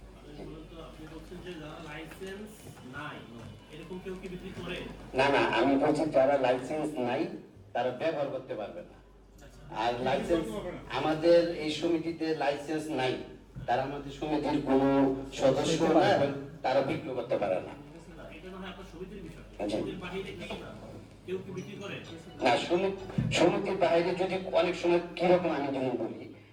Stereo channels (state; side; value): identical; both; correlation 1.00